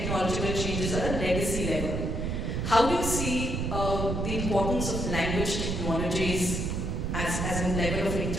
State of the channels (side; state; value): right; noise; rumble, 1 dB below the sound